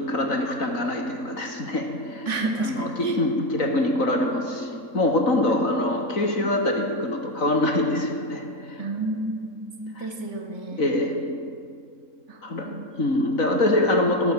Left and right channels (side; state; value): right; late; 3.5 ms